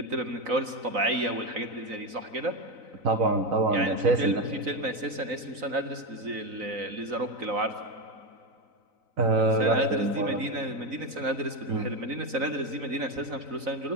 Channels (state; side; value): late; left; 3.9 ms